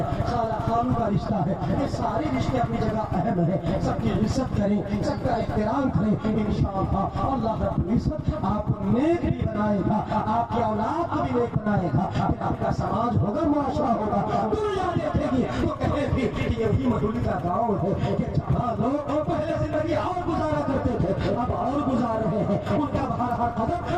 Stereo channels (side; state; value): both; identical; correlation 1.00